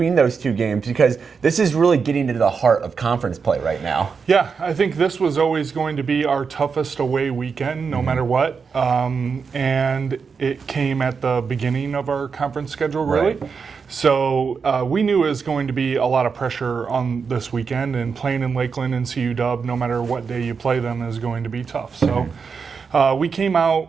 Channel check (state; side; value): quieter; left; 5.6 dB